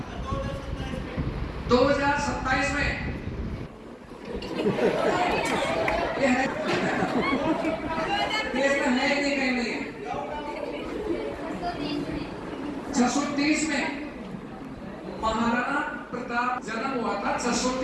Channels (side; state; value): both; identical; correlation 1.00